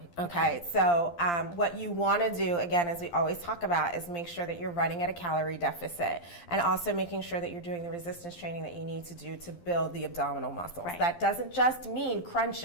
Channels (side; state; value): right; late; 12 ms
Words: Okay, so what you want to do, again, as we always talk about, is make sure that you're running at a calorie deficit and also making sure that you're doing the resistance training that you need to do to build the abdominal muscles. Right. That doesn't just mean